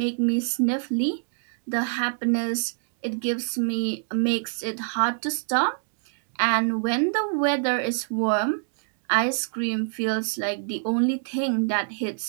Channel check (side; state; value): left; silent; digital silence